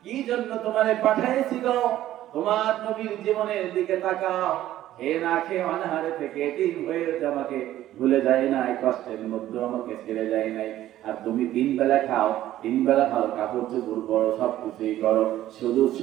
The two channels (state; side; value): quieter; left; 13.5 dB